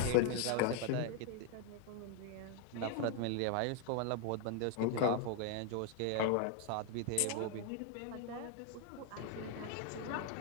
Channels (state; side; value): different; both; correlation 0.00